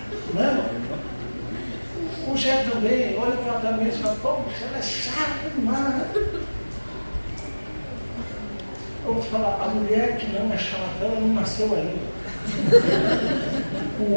Não é? O Jé também, olha para ela também e fala, poxa, ela é chata demais. Eu vou falar, a mulher que não é chata, ela não nasceu ainda. O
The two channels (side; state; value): both; inverted; correlation -1.00